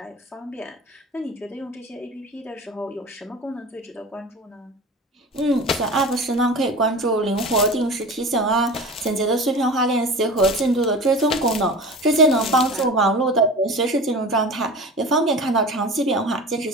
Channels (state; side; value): normal; both; correlation 0.34